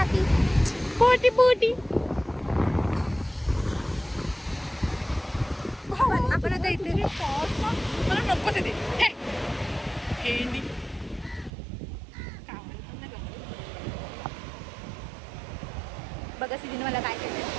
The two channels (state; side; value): drops out; left; at 11.5 s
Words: पोटी काहीतरी मला नको ते हेंडी बघा सिद्धीने मला काय केलं